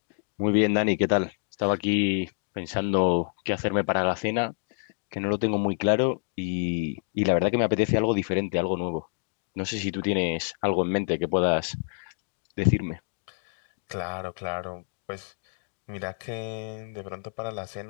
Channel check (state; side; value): silent; right; digital silence